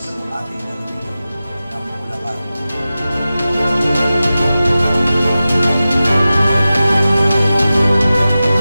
ng ating lalawigan ng Bulacan.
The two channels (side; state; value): both; inverted; correlation -0.95